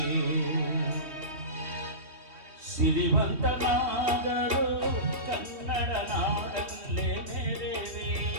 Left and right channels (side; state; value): left; late; 3.2 ms